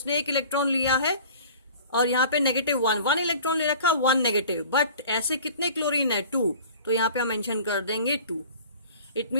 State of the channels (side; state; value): both; inverted; correlation -0.45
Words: एक इलेक्ट्रॉन लिया है और यहाँ पे -1 इलेक्ट्रॉन ले रखा, 1 नेगेटिव, बट ऐसे कितने क्लोरीन है 2, तो यहाँ पे हम मेंशन कर देंगे 2। इट